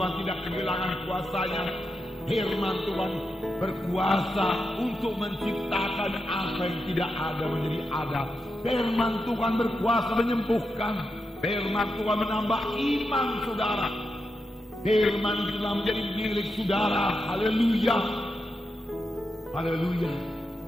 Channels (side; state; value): both; normal; correlation 0.87